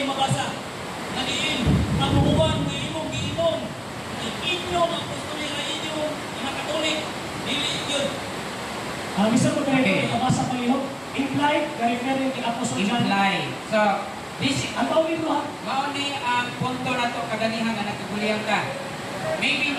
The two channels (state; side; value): identical; both; correlation 1.00